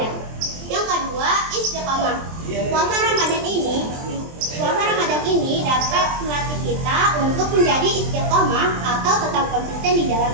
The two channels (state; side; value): late; left; 23 ms